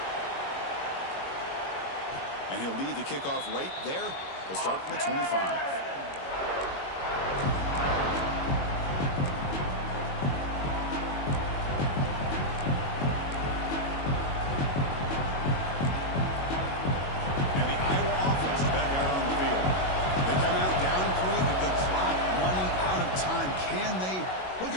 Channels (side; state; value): right; late; 22 ms